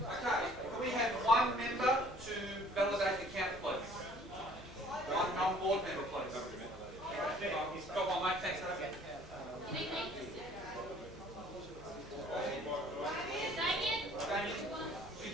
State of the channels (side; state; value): both; normal; correlation 0.55